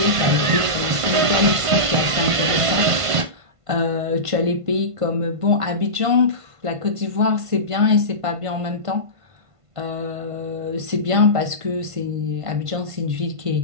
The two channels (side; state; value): left; late; 1.5 ms